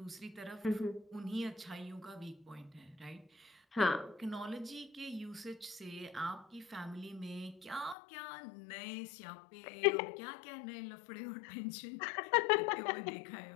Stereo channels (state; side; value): drops out; right; at 8.0 s